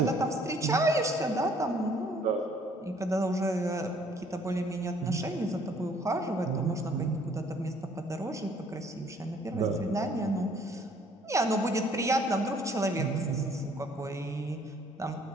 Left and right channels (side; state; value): both; normal; correlation 0.60